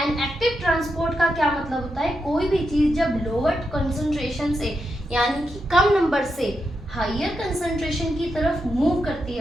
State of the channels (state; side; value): normal; both; correlation 0.85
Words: active transport का क्या मतलब होता है, कोई भी चीज जब लोअर कंसंट्रेशन से यानी कि कम नंबर से हायर कंसंट्रेशन की तरफ मूव करती